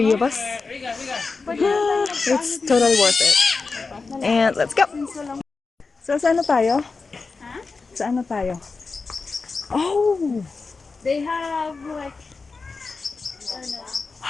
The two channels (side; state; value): right; quieter; 4.3 dB